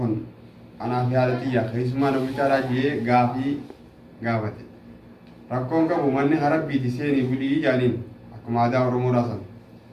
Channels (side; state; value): both; identical; correlation 1.00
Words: kun أنا في حالتي يا أخي اسمه أنا بيشارة جيه غافي غافتي ركون كابو مني هرب بيتسيني بودي جانين أكو ماذا أورمو راسن